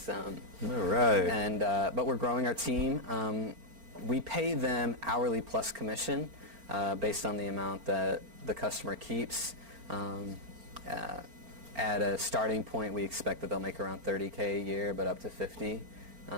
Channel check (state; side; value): late; left; 4.4 ms